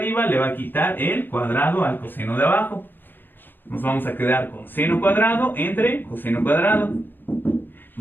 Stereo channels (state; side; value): late; right; 0.095 ms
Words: le va a quitar el cuadrado al coseno de abajo. Nos vamos a quedar con seno cuadrado entre coseno cuadrado.